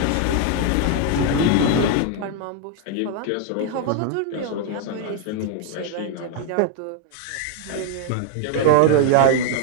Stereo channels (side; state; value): both; different; correlation 0.00